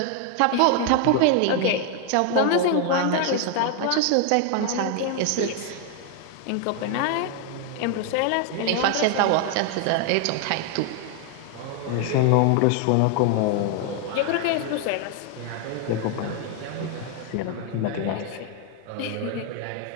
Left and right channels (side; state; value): both; different; correlation 0.00